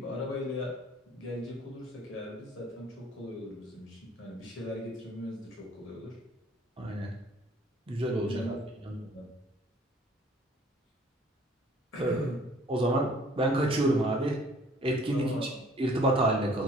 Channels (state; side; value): normal; both; correlation 0.55